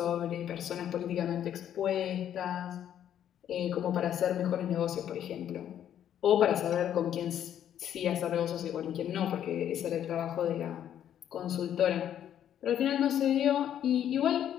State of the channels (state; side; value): quieter; right; 10.2 dB